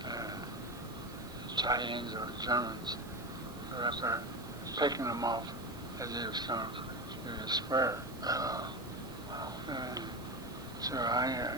tie-ins or Germans who were up there picking them off as they was coming through the square. So I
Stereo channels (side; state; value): right; noise; hiss, 20 dB below the sound